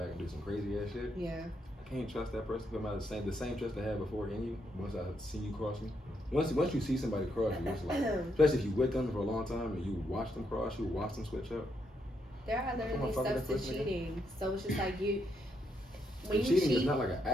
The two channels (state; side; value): normal; both; correlation 0.78